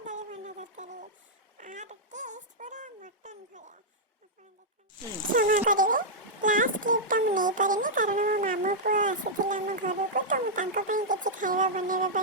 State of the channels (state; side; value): normal; both; correlation -0.08